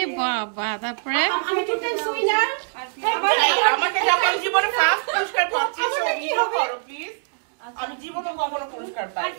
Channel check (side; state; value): left; silent; 63 dB below the other